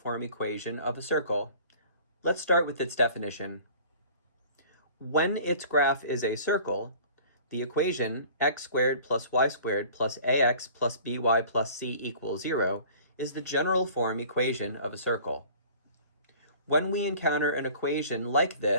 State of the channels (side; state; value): both; inverted; correlation -0.47